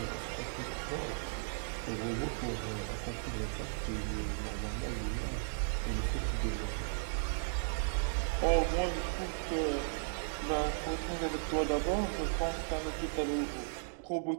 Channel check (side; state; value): left; silent; digital silence